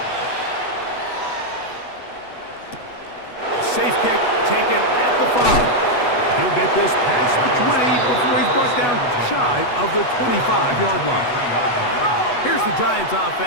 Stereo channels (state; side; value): late; right; 8.2 ms